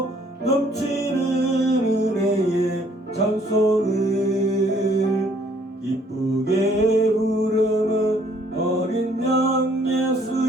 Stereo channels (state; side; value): normal; both; correlation 0.63